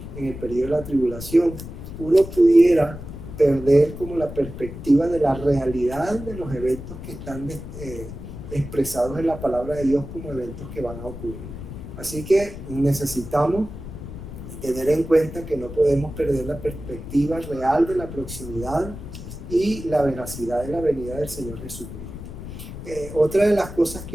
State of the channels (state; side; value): noise; left; rumble, 11 dB below the sound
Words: en el periodo de la tribulación, uno pudiera perder como la perspectiva de la realidad de los eventos que están expresados en la palabra de Dios como eventos que van a ocurrir. Así que necesitamos tener en cuenta que no podemos perder la perspectiva real de la proximidad y la veracidad de la venida del Señor Jesucristo. Otra de las cosas